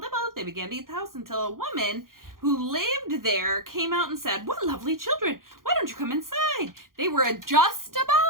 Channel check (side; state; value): left; late; 0.91 ms